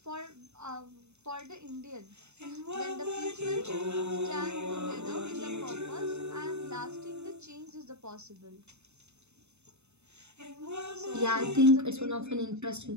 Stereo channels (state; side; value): late; left; 0.81 ms